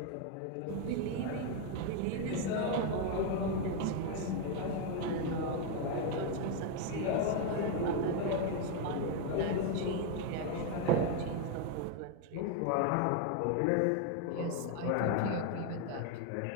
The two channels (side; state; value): both; different; correlation 0.01